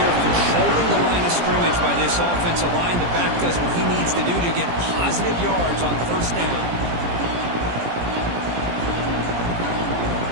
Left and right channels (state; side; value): late; left; 17 ms